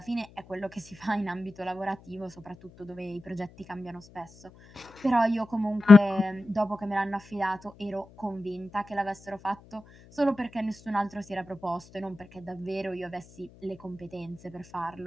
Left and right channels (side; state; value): left; noise; hum, 24 dB below the sound